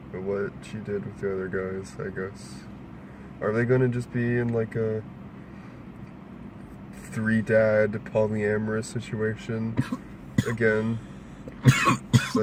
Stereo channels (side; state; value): both; identical; correlation 1.00